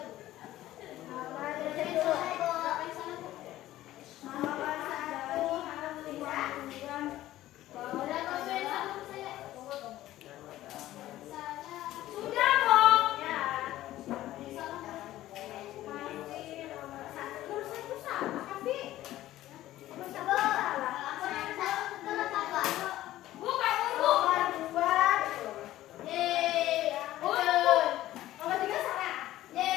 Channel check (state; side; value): quieter; right; 14.7 dB